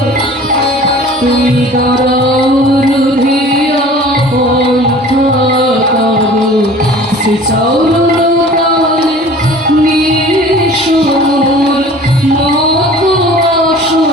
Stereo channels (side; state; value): both; normal; correlation 0.45